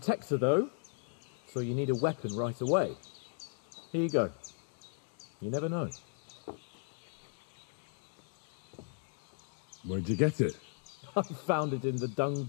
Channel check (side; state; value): right; silent; 54 dB below the other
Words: though. So you need a weapon right away. Here you go. You never know. Where'd you get it? I found it in the dung